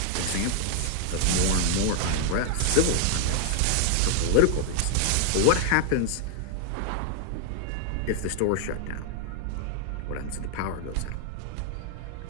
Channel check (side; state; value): both; different; correlation 0.00